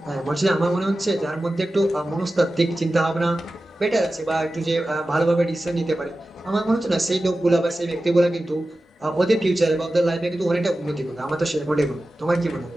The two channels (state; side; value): normal; both; correlation 0.94